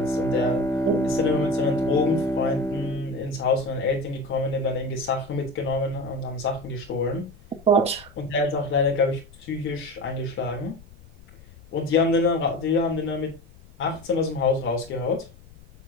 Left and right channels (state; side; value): noise; left; rumble, 22 dB below the sound